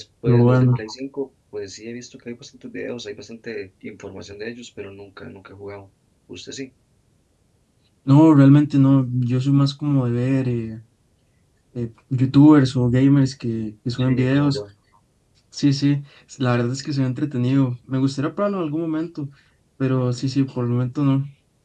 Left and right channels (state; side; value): identical; both; correlation 1.00